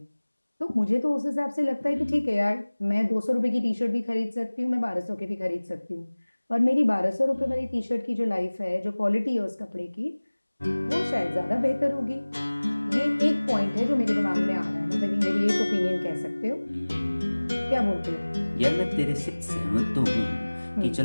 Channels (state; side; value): inverted; both; correlation -1.00